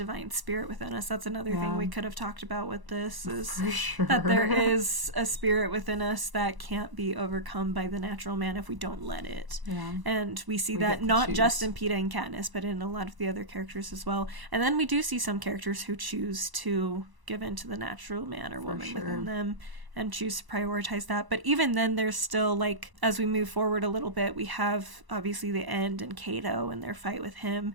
spirit within us. That's another thing we could have talked about with this, is that there is a spirit within us that can't be overcome by the natural man if we don't let it. Yeah. And we see that not just in Peeta and Katniss, but in a lot of the other characters as well. And then we do see some characters who choose to give in to the natural man or woman within them and choose to prioritize that. But even then, there's still, like, as we move forward a little bit, we have obviously the End and Cato and their fight with him,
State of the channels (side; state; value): left; late; 1.0 ms